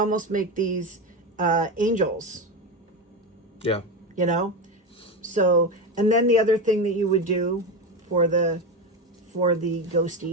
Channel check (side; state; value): both; normal; correlation 0.18